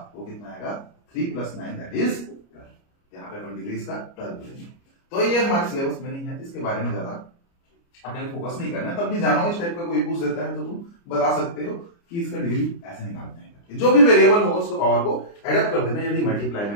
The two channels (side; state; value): right; late; 29 ms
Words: वो कितना आएगा 3 + 9 दैट इज 12। यहाँ पे अपन डिग्री इसका 12 बोलेंगे। तो ये हमारे सिलेबस में नहीं है, इसके बारे में ज्यादा अपने फोकस नहीं करना है, तब भी जानो इस टाइप का कोई पूछ देता है तो तुम बता सकते हो कि इसका डिग्री ऐसे निकालते हैं, जो भी वेरिएबल होगा उसको पावर को एडअप कर देना यदि मल्टीप्लाई